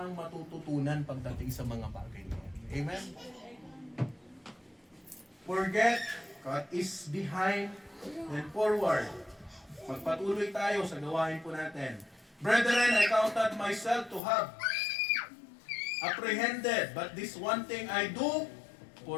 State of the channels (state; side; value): drops out; right; at 14.2 s